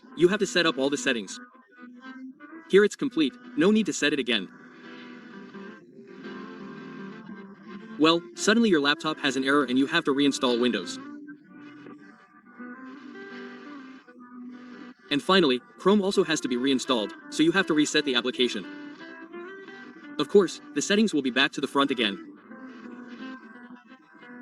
you have to set up all the settings. Here it's complete, no need to set it again. Well, suddenly your laptop has an error and you have to reinstall Windows. And finally, Chrome also has to be reinstalled, so you have to reset the application. Of course, the settings will be back to the front again.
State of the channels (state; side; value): identical; both; correlation 1.00